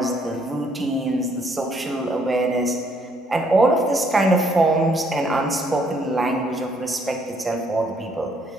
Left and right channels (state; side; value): normal; both; correlation 0.68